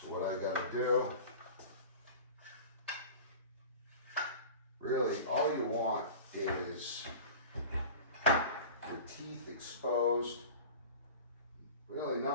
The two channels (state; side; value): inverted; both; correlation -0.36